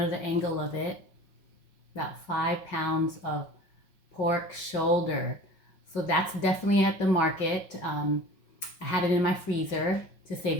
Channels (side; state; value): right; late; 5.5 ms